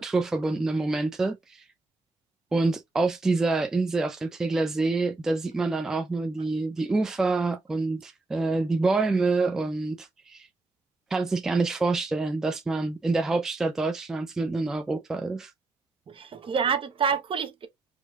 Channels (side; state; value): left; quieter; 3.1 dB